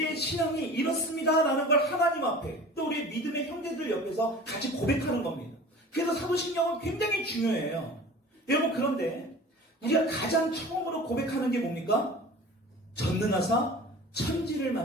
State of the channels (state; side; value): normal; both; correlation 0.41